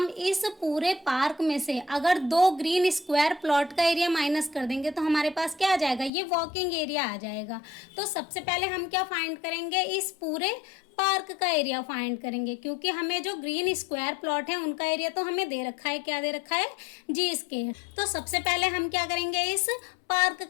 इस पूरे पार्क में से अगर 2 ग्रीन स्क्वायर प्लॉट का एरिया माइनस कर देंगे तो हमारे पास क्या आ जाएगा, ये वॉकिंग एरिया आ जाएगा। तो सबसे पहले हम क्या फाइंड करेंगे, इस पूरे पार्क का एरिया फाइंड करेंगे, क्योंकि हमें जो ग्रीन स्क्वायर प्लॉट है उनका एरिया तो हमें दे रखा है, क्या दे रखा है, जी स्क्वायर। तो सबसे पहले हम क्या करेंगे, इस पार्क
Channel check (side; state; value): right; drops out; at 6.1 s